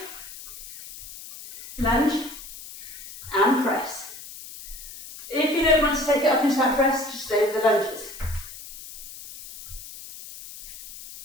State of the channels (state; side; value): noise; left; hiss, 14 dB below the sound